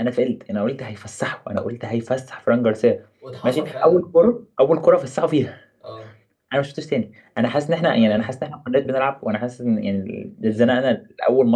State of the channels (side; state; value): both; identical; correlation 1.00